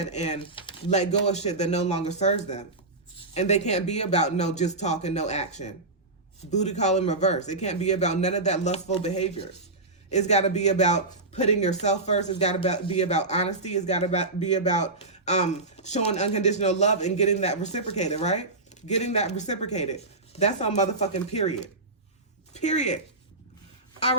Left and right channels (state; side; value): quieter; left; 3.1 dB